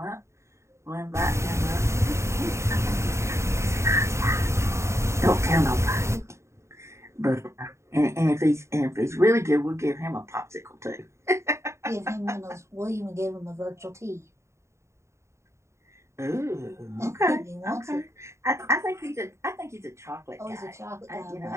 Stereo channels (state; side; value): late; left; 0.14 ms